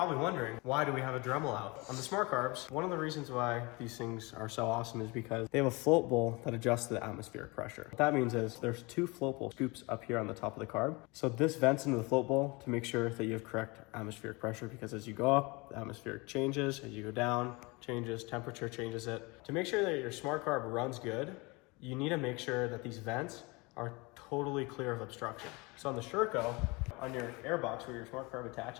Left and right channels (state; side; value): quieter; right; 26.1 dB